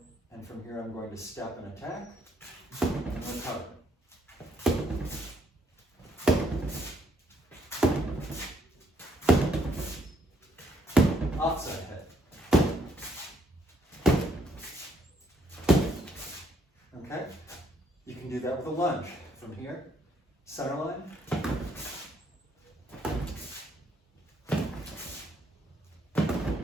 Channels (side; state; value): both; normal; correlation 0.69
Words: and from here I'm going to step and attack, and recover. Outside head. Okay? You can do that with a lunge. From here, center line.